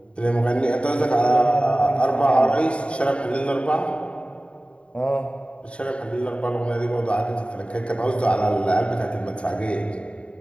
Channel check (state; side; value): late; right; 0.060 ms